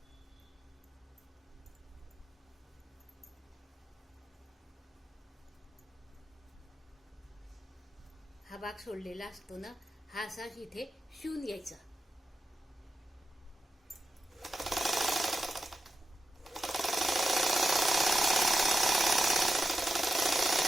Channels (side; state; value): both; normal; correlation 0.89